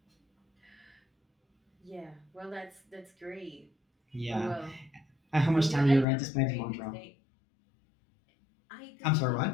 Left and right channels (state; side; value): drops out; right; at 6.1 s